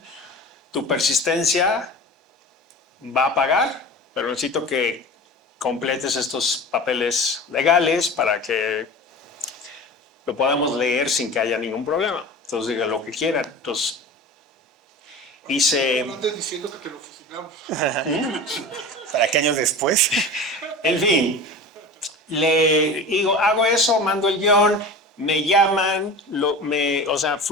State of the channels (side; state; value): both; normal; correlation 0.34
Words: tu persistencia va a pagar, pero necesito que completes estos papeles legales para que lo podamos leer sin que haya ningún problema. Entonces diga lo que quieran. Entonces hice... No andes diciendo que te lo fusilamos. ¿Para qué años después? En fin, le digo, hago eso, mando el guión, me llaman,